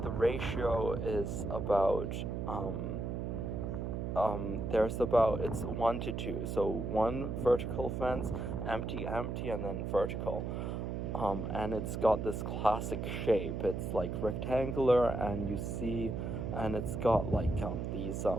the ratio is about it's 1 to 2, so 1 vertical fence, empty, and then vertical, and it's got this classic shape. It's like rectangular, and it's got like these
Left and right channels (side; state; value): right; noise; hum, 3 dB below the sound